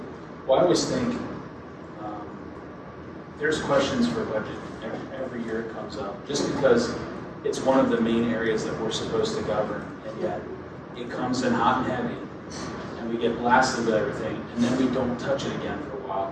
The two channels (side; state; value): both; identical; correlation 1.00